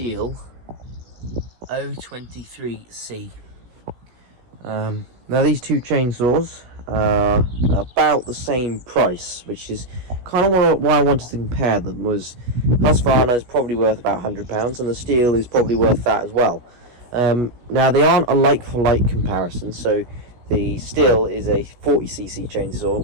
023C. Now these two chainsaws are about the same price, which is kind of why I wanted to compare them. Was Husqvarna is probably worth about £100 and the Stihl is probably worth that as well. Now they aren't a like-for-like comparison, so the Stihl is a 40cc chainsaw,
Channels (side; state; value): left; late; 17 ms